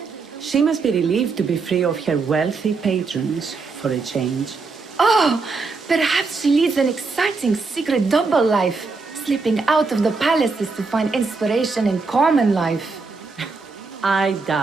She must be relieved to be free of her wealthy patrons for a change. Oh, perhaps she leads an exciting secret double life, slipping out of the palaces to find inspiration in common life. I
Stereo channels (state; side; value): quieter; left; 4.2 dB